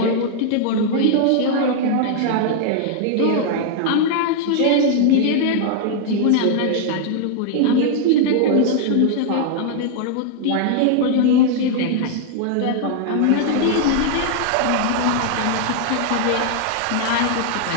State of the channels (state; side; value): different; both; correlation 0.00